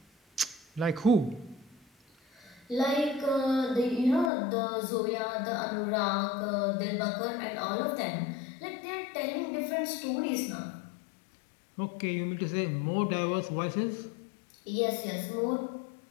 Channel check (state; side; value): drops out; right; at 4.3 s